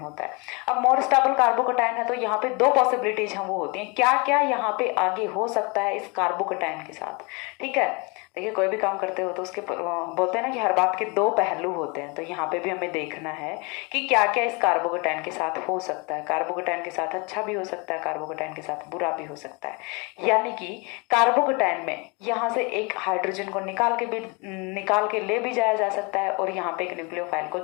है। अब मोर स्टेबल कार्बोकेटाइन है तो यहाँ पे 2 पॉसिबिलिटीज हम वो होती हैं, क्या क्या यहाँ पे आगे हो सकता है इस कार्बोकेटाइन के साथ, ठीक है। देखिए कोई भी काम करते हो तो उसके बोलते हैं ना कि हर बात के 2 पहलू होते हैं। तो यहाँ पे भी हमें देखना है कि क्या क्या इस कार्बोकेटाइन के साथ हो सकता है। कार्बोकेटाइन के साथ अच्छा भी हो सकता है, कार्बोकेटाइन के साथ बुरा भी हो सकता है। यानी कि कार्बोकेटाइन में यहाँ से एक हाइड्रोजन को निकाल के ले भी जाया जा सकता है, और यहाँ पे एक न्यूक्लियोफाइल को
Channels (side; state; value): right; quieter; 29.5 dB